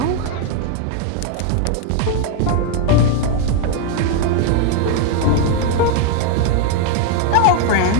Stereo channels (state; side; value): different; both; correlation 0.01